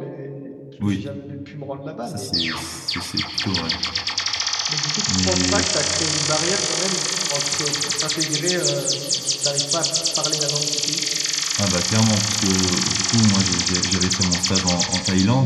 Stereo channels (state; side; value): identical; both; correlation 1.00